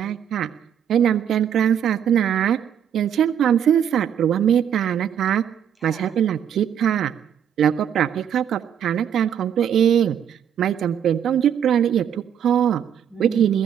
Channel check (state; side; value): quieter; left; 8.9 dB